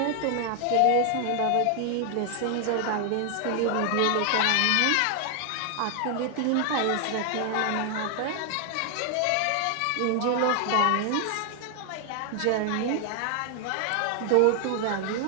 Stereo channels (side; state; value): both; different; correlation 0.00